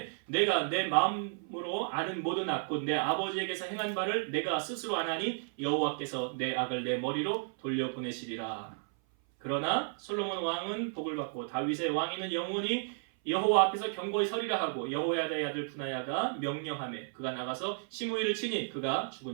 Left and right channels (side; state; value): left; silent; 56 dB below the other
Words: 내가 내 마음으로 아는 모든 악 곧 내 아버지에게서 행한 바를 내가 스스로 아나니 여호와께서 내 악을 내 머리로 돌려보내시리라. 그러나 솔로몬 왕은 복을 받고 다윗의 왕위는 영원히 여호와 앞에서 경고히 서리라 하고 여호야다의 아들 분하야가 명령하매 그가 나가서 시므이를 치니 그가